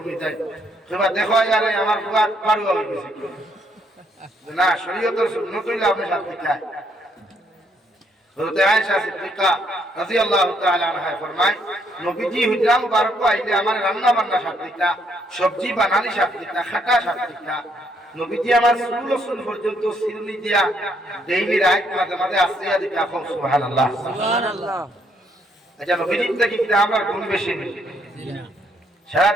তাই তোমার দেখো यार আমার বুয়া পারু হয়ে গেছে না শরীয়তের সুন্নত হইলে আপনি সাথ দিতে হযরত আয়েশা সিদ্দিকা রাদিয়াল্লাহু তাআলা আনহা ফরমায় নবীজি হুজরা মুবারক আইলে আমার রান্না বান্না সাথ দিতা সবজি বানানি সাথ দিতা খাটা সাথ দিতা নবীজি আমার সুল পর্যন্ত সিরনি দিয়া ডেইলি রাত মাঝে মাঝে আসিয়া দিতা সুবহানাল্লাহ সুবহানাল্লাহ আচ্ছা নবীজির থেকে কি আমরা গুণ বেশি নেই সারা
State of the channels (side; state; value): both; normal; correlation 0.71